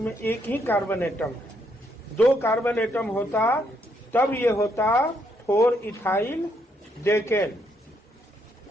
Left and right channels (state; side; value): normal; both; correlation 0.74